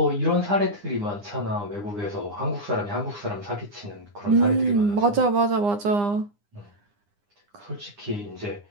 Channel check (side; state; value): left; late; 9.8 ms